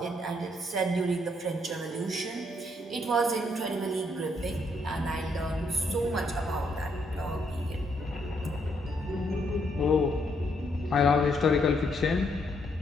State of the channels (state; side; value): normal; both; correlation 0.73